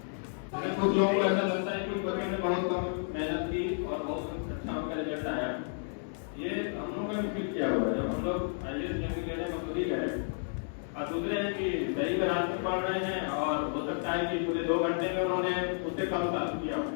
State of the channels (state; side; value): silent; right; digital silence